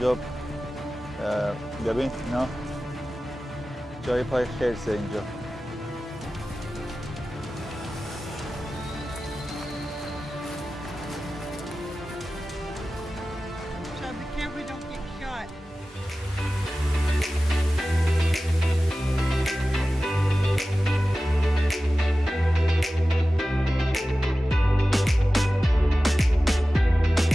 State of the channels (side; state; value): both; normal; correlation 0.95